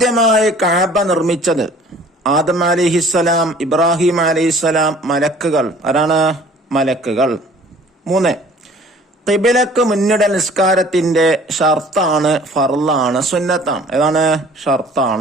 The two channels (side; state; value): both; normal; correlation 0.51